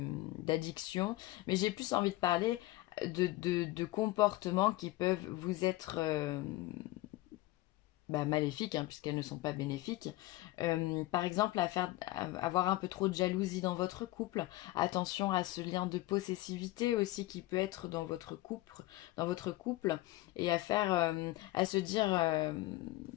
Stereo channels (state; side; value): quieter; right; 18.3 dB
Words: d'addiction, mais j'ai plus envie de parler de comportements qui peuvent vous être maléfiques, hein, puisqu'elles ne sont pas bénéfiques. Par exemple, avoir un peu trop de jalousie dans votre couple. Attention à ce lien de possessivité aussi qui peut être dans votre couple, et à se dire